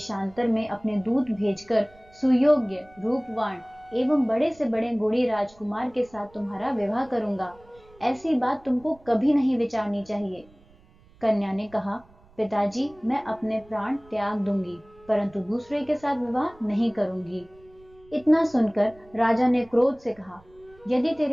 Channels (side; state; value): right; noise; rumble, 27 dB below the sound